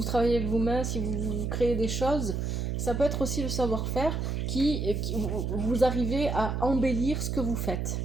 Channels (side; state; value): right; noise; hum, 1 dB below the sound